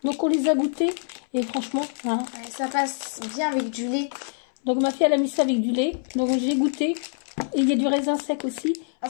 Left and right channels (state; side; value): silent; right; 62 dB below the other